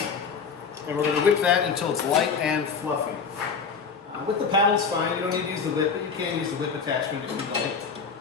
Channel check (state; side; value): quieter; right; 5.7 dB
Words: And we're going to whip that until it's light and fluffy. With the paddle's fine. You don't need to use the whip, but you can use the whip attachment if you'd like.